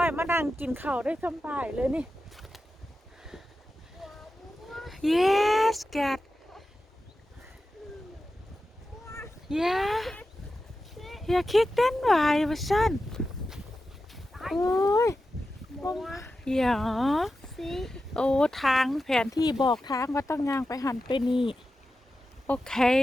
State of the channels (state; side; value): normal; both; correlation 0.92